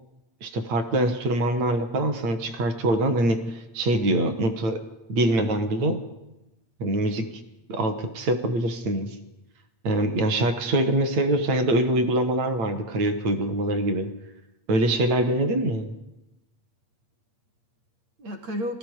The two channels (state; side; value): late; left; 8.6 ms